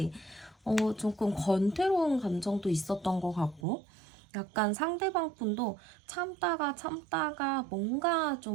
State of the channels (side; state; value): left; drops out; at 3.7 s